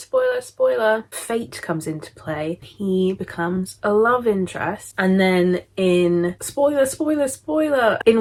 spoiler, fate comes into play. He becomes a love interest. And then in spoiler, in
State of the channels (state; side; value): identical; both; correlation 1.00